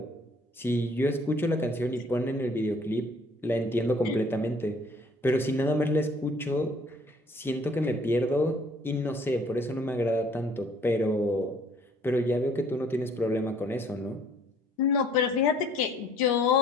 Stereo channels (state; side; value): normal; both; correlation 0.58